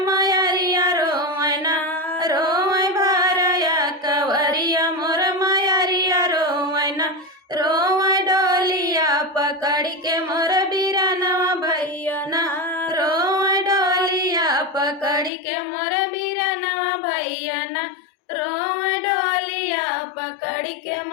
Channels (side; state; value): right; drops out; at 15.3 s